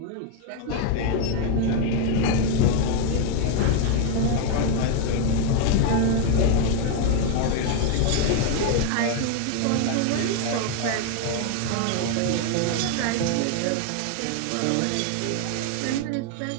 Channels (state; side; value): different; both; correlation 0.01